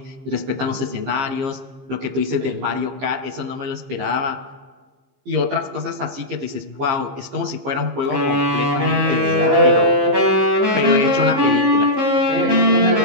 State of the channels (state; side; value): late; left; 15 ms